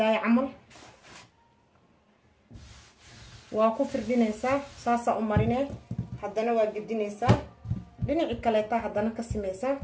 camal. waa ku firdhinaysaa saasaa u marinee haddana waa gedinaysaa dhinaci kaleeta haddana ka sameysaa.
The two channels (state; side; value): identical; both; correlation 1.00